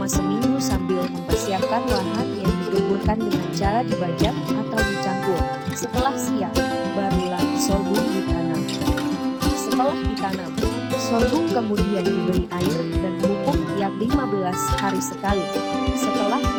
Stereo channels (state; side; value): identical; both; correlation 1.00